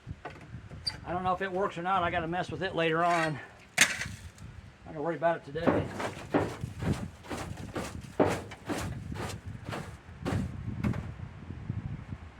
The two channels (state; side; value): identical; both; correlation 1.00